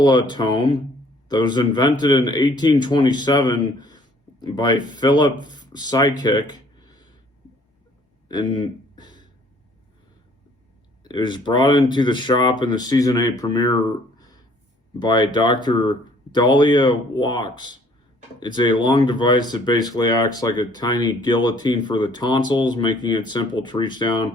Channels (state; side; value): normal; both; correlation 0.59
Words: that was invented in 1827 by Philip Psychic, and it was brought into the shop in the season 8 premiere by Dr. Dahlia Walks. It's a long device that basically acts like a tiny guillotine for the tonsils, making it simple to reach